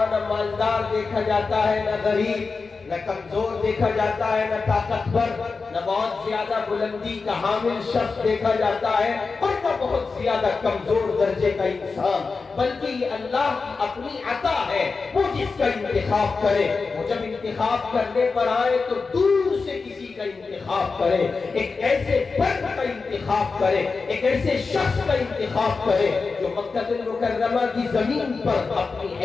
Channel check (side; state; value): right; quieter; 4.5 dB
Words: نہ مالدار دیکھا جاتا ہے، نہ غریب، نہ کمزور دیکھا جاتا ہے، نہ طاقتور، نہ بہت زیادہ بلندی کا حامل شخص دیکھا جاتا ہے اور نہ بہت زیادہ کمزور درجے کا انسان، بلکہ یہ اللہ کی اپنی عطا ہے۔ وہ جس کا انتخاب کرے، وہ جب انتخاب کرنے پر آئے تو دور سے کسی کا انتخاب کرے، ایک ایسے فرد کا انتخاب کرے، ایک ایسے شخص کا انتخاب کرے جو مکہ المکرمہ کی زمین پر اپنی